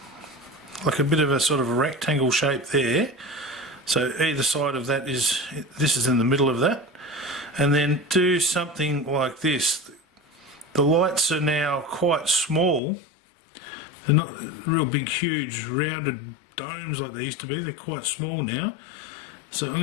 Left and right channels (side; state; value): right; drops out; at 12.8 s